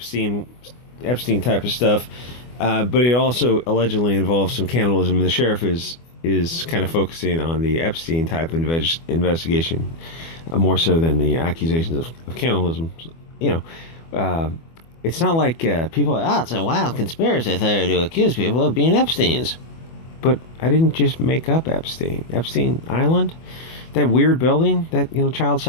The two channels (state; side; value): late; right; 24 ms